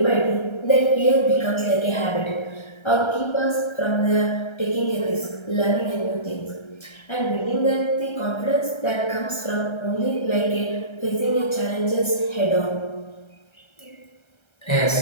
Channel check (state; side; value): late; right; 1.3 ms